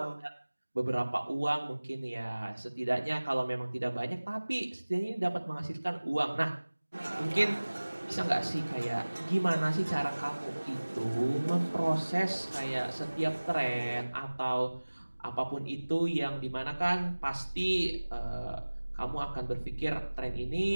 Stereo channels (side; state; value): both; inverted; correlation -1.00